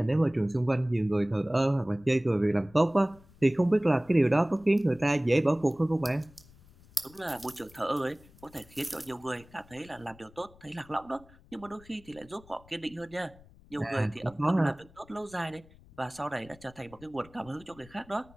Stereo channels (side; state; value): left; noise; rumble, 25 dB below the sound